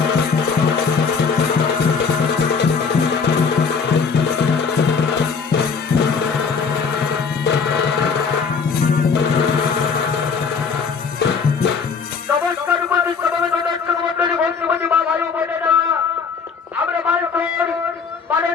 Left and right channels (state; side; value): quieter; right; 5.6 dB